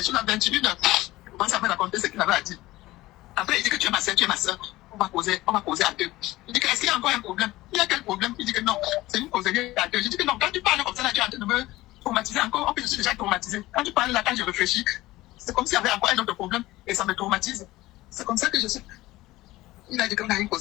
choses à 21h. Il commence à me raconter ce qu'il avait à dire. Après, il dit que tu es ma soeur, tu es ma soeur. On va causer à deux. Il dit que est-ce qu'il y a encore un problème? Il y a quel problème? Il dit que non, c'est une causerie à deux. Je dis que non, quand tu parles comme ça, là, tu es en train de me traumatiser encore. En plus, je suis déjà traumatisé. Quand tu parles là, quand je réfléchis, c'est comme s'il y avait encore un autre problème et ça me traumatise. C'est comme ça que je suis. Il a dit qu'on a une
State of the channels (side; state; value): right; quieter; 17.9 dB